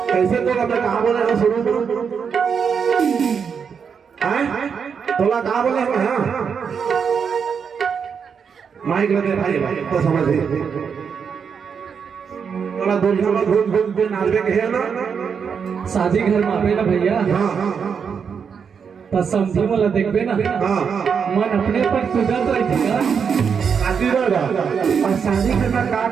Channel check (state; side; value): quieter; left; 6.5 dB